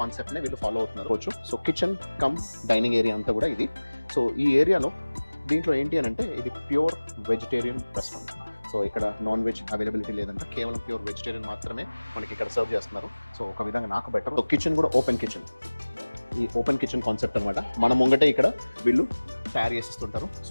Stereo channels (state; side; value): inverted; both; correlation -1.00